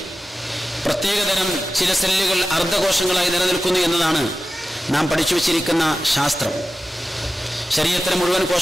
പ്രത്യേകതരം ചില സെല്ലുകൾ അർദ്ധകോശങ്ങളായി നിലനിൽക്കുന്നു എന്നതാണ് നാം പഠിച്ചു വച്ചിരിക്കുന്ന ശാസ്ത്രം. ശരീരത്തിലെ മുഴുവൻ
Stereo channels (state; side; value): normal; both; correlation 0.94